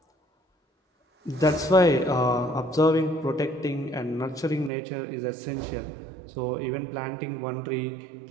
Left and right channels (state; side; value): drops out; left; at 4.7 s